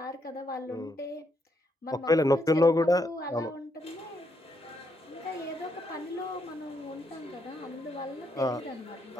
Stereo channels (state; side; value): normal; both; correlation 0.77